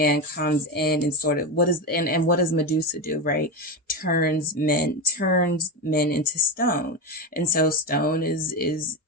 comes in and sort of, what does Medusa do, right? Turns men into stone. And so stone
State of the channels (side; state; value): both; normal; correlation 0.15